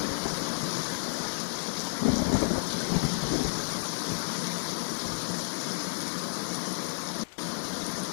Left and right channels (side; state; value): right; silent; digital silence